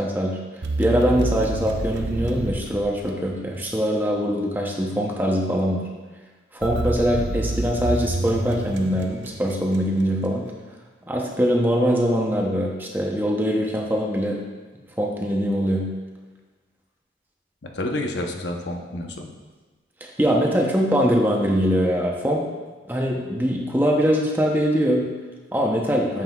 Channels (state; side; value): normal; both; correlation 0.77